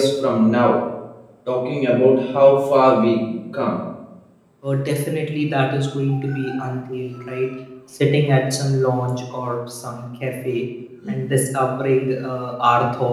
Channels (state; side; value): identical; both; correlation 1.00